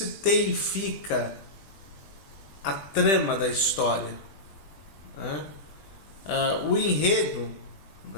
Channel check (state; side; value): late; right; 20 ms